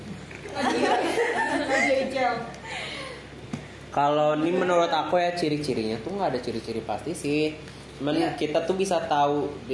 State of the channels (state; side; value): identical; both; correlation 1.00